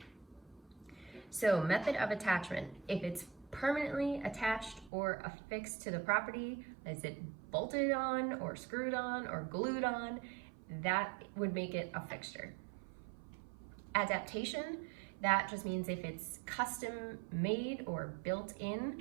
So method of attachment, if it's permanently attached or affixed to the property, is it bolted on or screwed on or glued on, that would make it a fixture. Adaptation, that just means if it's custom made or built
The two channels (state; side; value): drops out; left; at 4.9 s